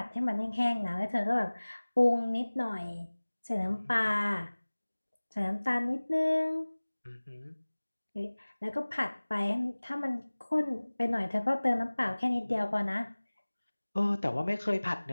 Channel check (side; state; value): both; inverted; correlation -1.00